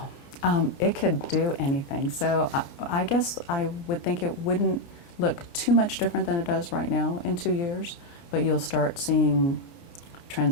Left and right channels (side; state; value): right; late; 29 ms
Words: Wow, it could do anything. So I guess I would think it wouldn't look too much different than it does right now in 2 years. But you'll start seeing